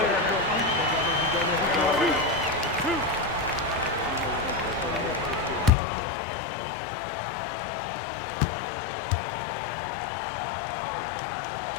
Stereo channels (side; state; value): right; drops out; at 5.7 s